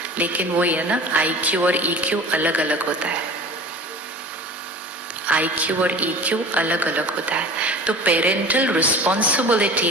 लेकिन वो ये ना IQ और EQ अलग अलग होता है। IQ और EQ अलग अलग होता है। तो पेरेंटल रिस्पॉन्सिबिलिटी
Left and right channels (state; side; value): normal; both; correlation 0.38